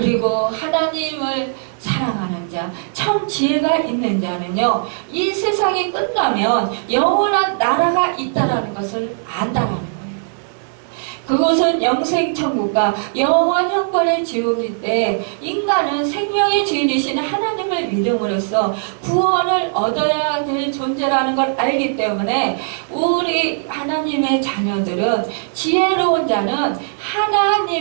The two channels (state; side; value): silent; left; 65 dB below the other